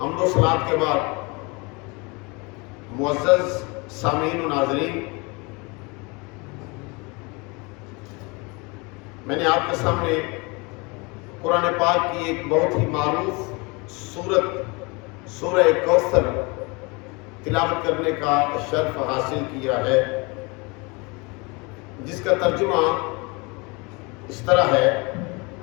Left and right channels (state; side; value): quieter; right; 28.1 dB